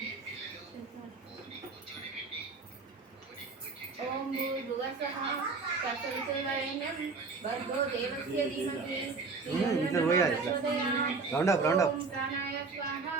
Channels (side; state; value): left; quieter; 4.3 dB